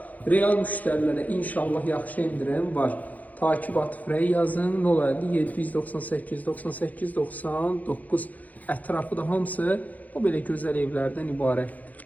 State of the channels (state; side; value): late; right; 0.078 ms